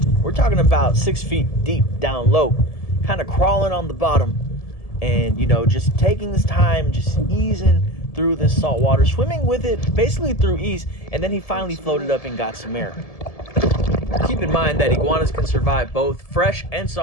We're talking about 6 feet deep down low, kind of crawling on the bottom, and, you know, just taking his time, just easing through this salt water, swimming with it basically through ease, and then he finally floated up and got some air. Keep in mind that iguanas can survive both fresh and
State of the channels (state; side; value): late; right; 1.7 ms